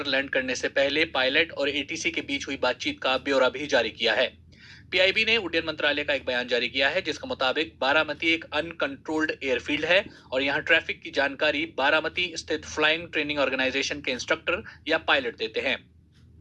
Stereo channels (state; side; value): identical; both; correlation 1.00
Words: लैंड करने से पहले पायलट और एटीसी के बीच हुई बातचीत का ब्यौरा भी जारी किया है। पीआईबी ने उड्डयन मंत्रालय का एक बयान जारी किया है जिसके मुताबिक बारामती एक अनकंट्रोल्ड एयरफील्ड है और यहाँ ट्रैफिक की जानकारी बारामती स्थित फ्लाइंग ट्रेनिंग ऑर्गेनाइजेशन के इंस्ट्रक्टर या पायलट देते हैं।